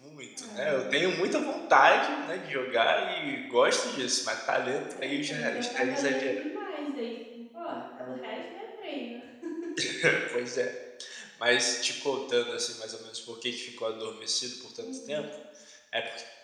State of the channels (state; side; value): identical; both; correlation 1.00